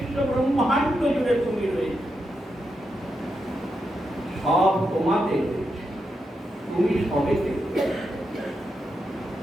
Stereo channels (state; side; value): normal; both; correlation 0.85